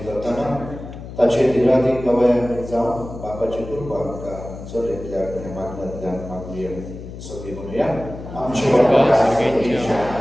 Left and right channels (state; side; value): noise; left; hum, 12 dB below the sound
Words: करताना ताचे धीराधीक गवयांनी जाऊन बापाची कृपा आमकां चलयतल्या आनी मागण्यांतल्यान मागुया सगळीं म्हणुया आमचे बाबा सगळ्यांच्या